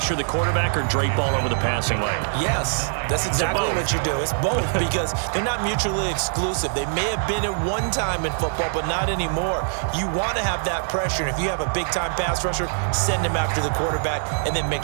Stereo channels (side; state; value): left; silent; digital silence